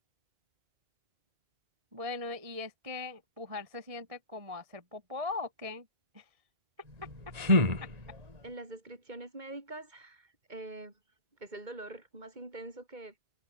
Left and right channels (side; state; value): left; late; 1.9 ms